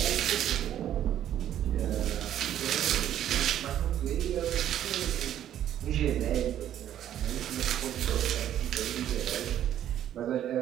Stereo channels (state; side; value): quieter; left; 11.2 dB